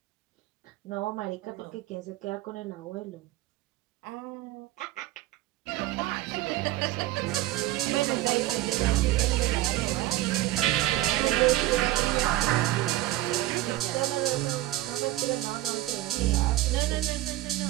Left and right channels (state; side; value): quieter; left; 16.0 dB